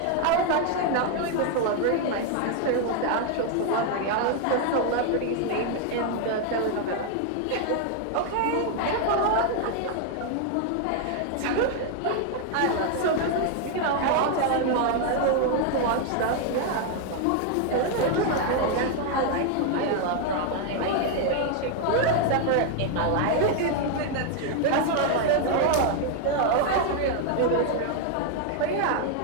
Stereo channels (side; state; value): both; different; correlation 0.00